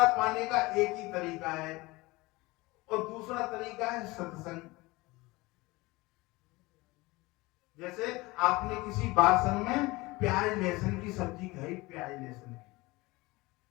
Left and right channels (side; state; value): right; quieter; 22.1 dB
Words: पाने का एक ही तरीका है, और दूसरा तरीका है सत्संग। जैसे आपने किसी बासन में प्याज लहसुन की सब्जी खाई, प्याज लहसुन की,